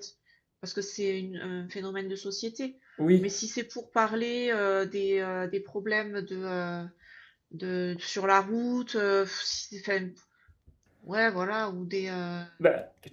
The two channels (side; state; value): both; identical; correlation 1.00